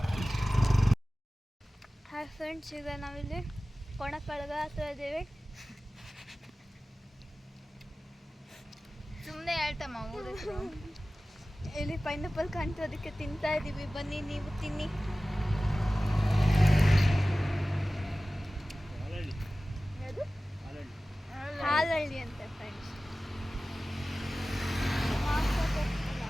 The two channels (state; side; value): normal; both; correlation 0.97